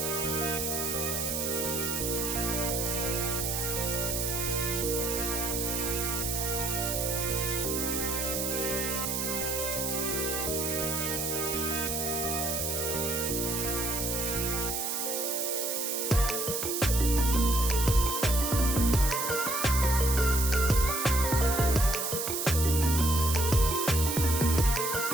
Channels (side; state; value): right; noise; hiss, 1 dB below the sound